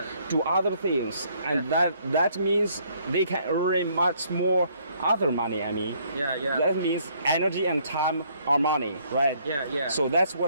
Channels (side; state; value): both; inverted; correlation -0.66